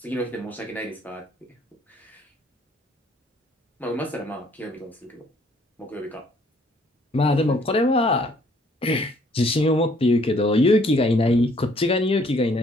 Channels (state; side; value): normal; both; correlation 0.62